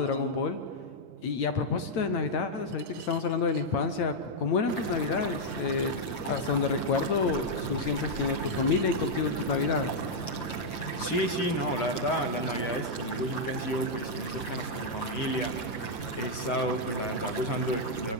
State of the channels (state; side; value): late; right; 9.0 ms